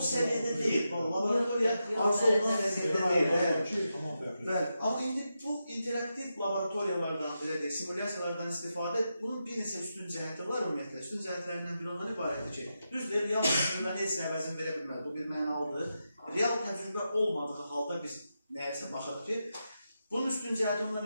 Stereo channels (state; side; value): inverted; both; correlation -0.88